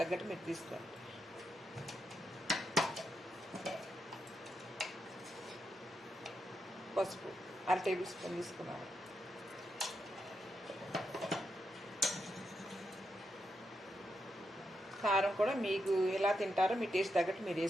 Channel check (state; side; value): normal; both; correlation 0.83